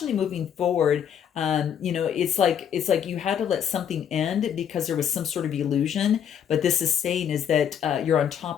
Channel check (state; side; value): quieter; right; 8.7 dB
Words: moving forward. It's like you had to let something end because there was some sort of illusion. But this is saying is that you're on